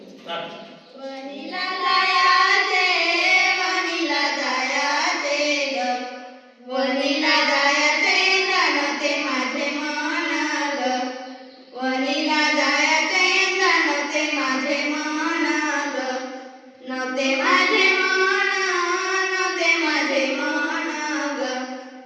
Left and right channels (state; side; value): identical; both; correlation 1.00